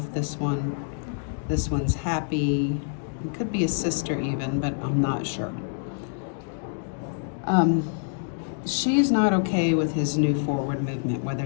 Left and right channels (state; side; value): silent; right; digital silence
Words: this one. This one's happy. It could be a sister even, but I'm not sure. She's not okay with his new forward movement,